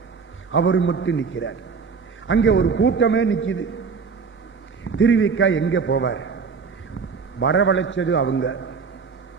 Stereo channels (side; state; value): left; quieter; 5.4 dB